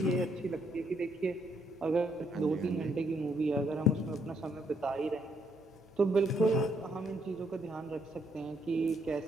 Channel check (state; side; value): normal; both; correlation 0.72